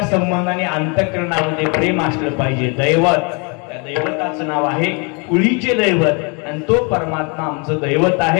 संबंधाने अंतःकरणामध्ये प्रेम असलं पाहिजे. दैवत, त्या दैवताचं नाव आहे कुळीचे दैवत आणि तो परमात्मा आमचं दैवत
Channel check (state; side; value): quieter; right; 33.4 dB